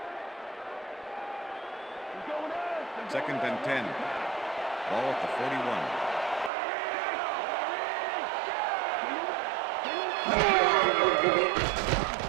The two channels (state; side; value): drops out; left; at 6.5 s